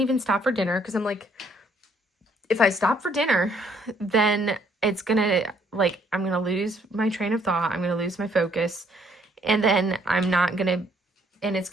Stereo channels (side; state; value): both; normal; correlation 0.66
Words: stop for dinner because I'm like, if I stop for dinner, then it's gonna, like, I'm gonna lose my train of thought. I'm gonna lose my focus, and then I'm not gonna, and it's